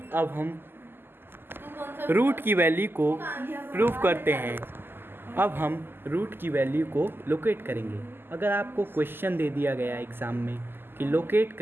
अब हम रूट की वैल्यू को प्रूव करते हैं। अब हम रूट की वैल्यू को लोकेट करेंगे। अगर आपको क्वेश्चन दे दिया गया एग्ज़ाम में कि लोकेट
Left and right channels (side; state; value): left; late; 0.10 ms